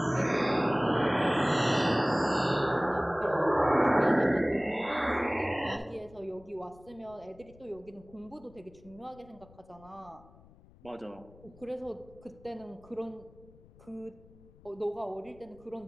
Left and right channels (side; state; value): left; noise; rumble, 24 dB below the sound